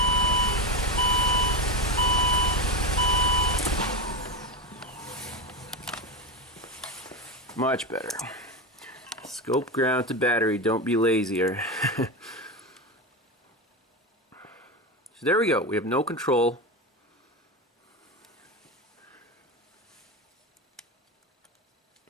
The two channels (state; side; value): normal; both; correlation 0.17